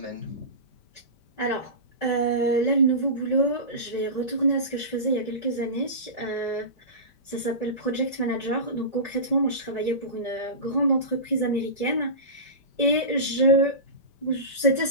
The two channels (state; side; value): late; right; 5.2 ms